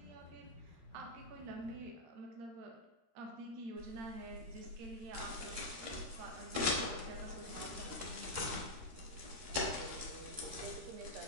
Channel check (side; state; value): left; late; 13 ms